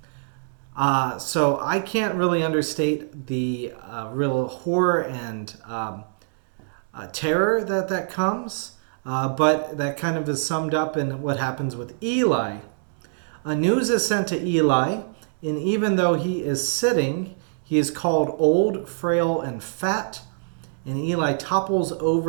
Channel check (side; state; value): left; silent; digital silence